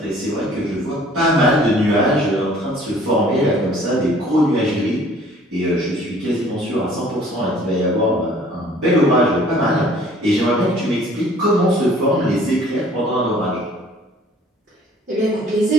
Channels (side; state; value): both; normal; correlation 0.54